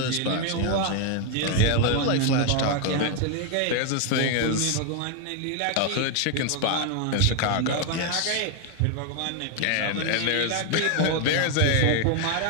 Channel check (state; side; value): different; both; correlation 0.01